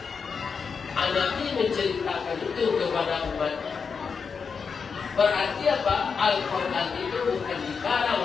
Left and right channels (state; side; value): quieter; right; 5.7 dB